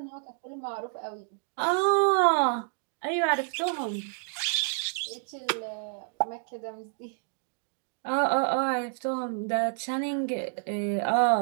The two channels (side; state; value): left; silent; 59 dB below the other